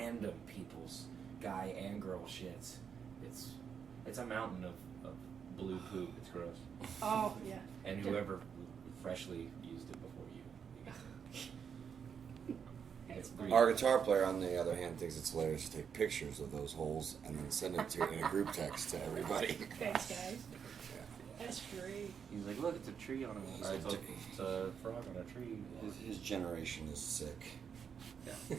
people's guy and girl shits, it's a mountain of blue poop. It's gross. Oh yeah. And whoever freshly used it before you. It's Our guitar player, on the other hand, thinks it's hilarious to take pictures of those holes and then send it in a group text to everybody. Thanks, guys. That's great. He's like, look, it's a tree on a. It's a frog on a tree. His generation is sick. Yeah.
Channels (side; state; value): left; quieter; 7.1 dB